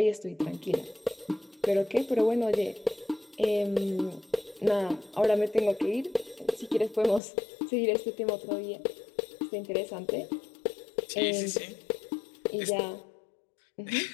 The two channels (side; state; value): right; drops out; at 7.2 s